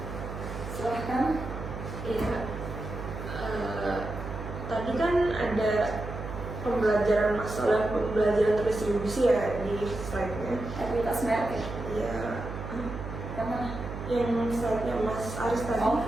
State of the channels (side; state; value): right; noise; hum, 8 dB below the sound